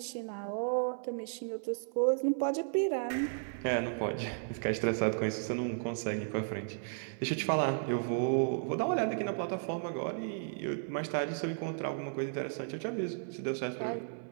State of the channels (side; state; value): left; silent; 55 dB below the other